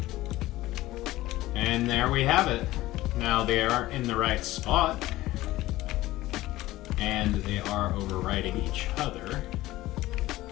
And there we have it. Now they are in the right spot, and they are overwriting each other.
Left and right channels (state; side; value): quieter; right; 17.0 dB